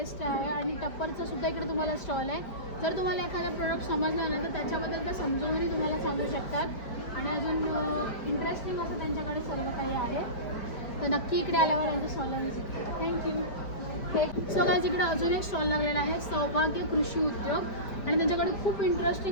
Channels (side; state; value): right; late; 5.0 ms